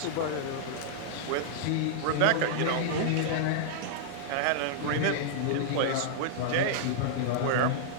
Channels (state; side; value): different; both; correlation -0.01